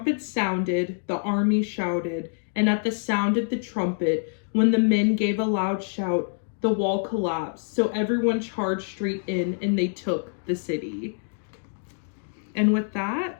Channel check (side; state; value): right; silent; digital silence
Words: sounded, the army shouted, and at the sound of the trumpet, when the men gave a loud shout, the wall collapsed, so everyone charged straight in, and they took the city. And with